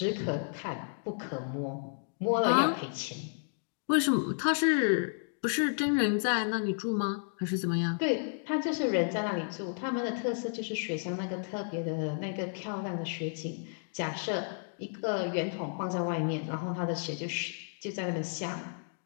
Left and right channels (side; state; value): right; silent; digital silence